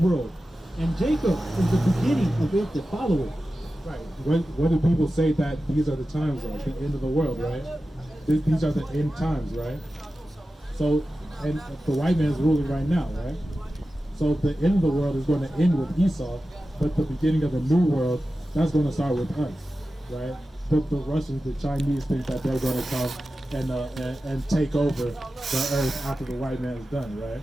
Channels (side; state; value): both; normal; correlation 0.94